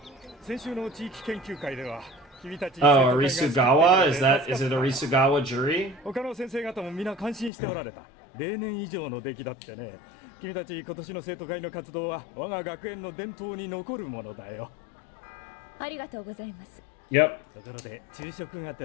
先週の地域研究会では君たち Oh, Arisugawa? Is it Arisugawa Juri? 他の先生方も皆感心しておられた例年以上の出来だってね君たち今年の生徒会の活動は我が学園の伝統に残るものだよありがとうございます Yep. ところで昼食が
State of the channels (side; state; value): right; drops out; at 7.5 s